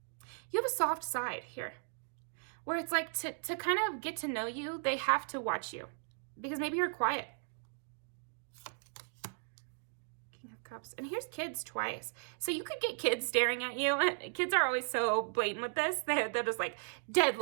you have a soft side here where it's like to kind of get to know you, they have to watch you because maybe you're quiet. King of Cups. And here's kids twice. So you could get kids staring at you. Kids are always so blatant with this. They're just like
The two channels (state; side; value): silent; left; digital silence